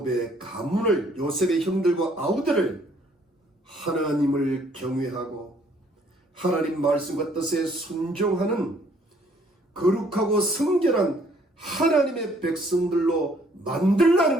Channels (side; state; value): both; normal; correlation 0.63